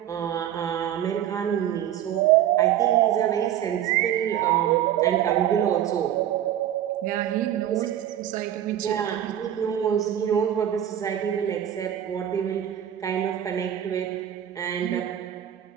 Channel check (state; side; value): quieter; left; 10.8 dB